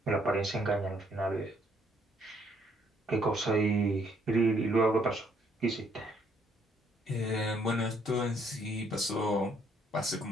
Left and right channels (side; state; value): both; normal; correlation 0.68